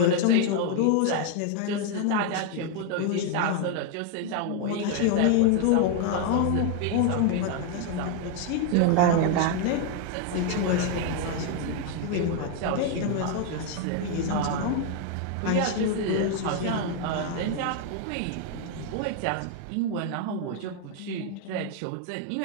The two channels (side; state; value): both; different; correlation 0.01